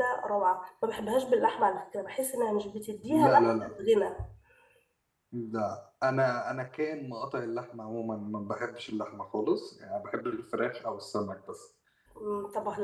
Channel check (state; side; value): identical; both; correlation 1.00